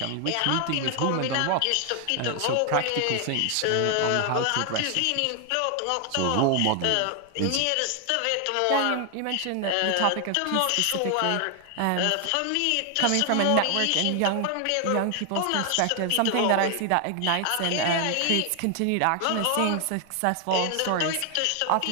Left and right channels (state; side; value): different; both; correlation 0.00